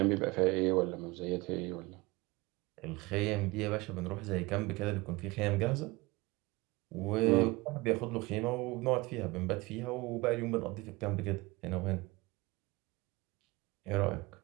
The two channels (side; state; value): left; quieter; 22.9 dB